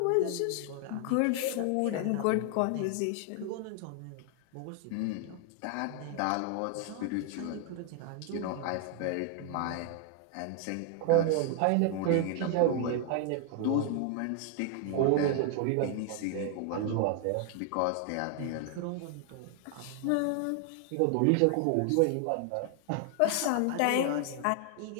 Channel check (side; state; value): both; different; correlation 0.00